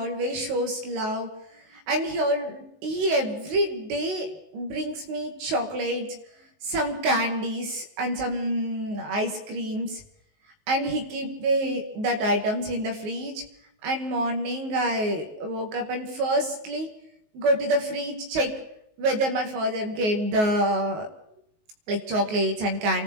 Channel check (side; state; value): left; late; 19 ms